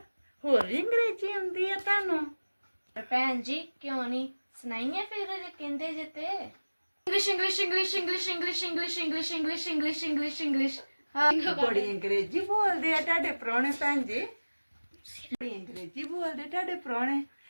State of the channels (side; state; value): both; inverted; correlation -1.00